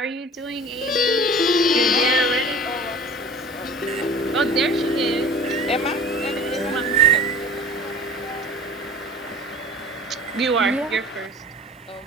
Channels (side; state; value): both; normal; correlation 0.41